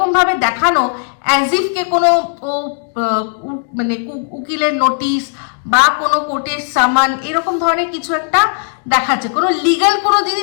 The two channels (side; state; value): right; silent; digital silence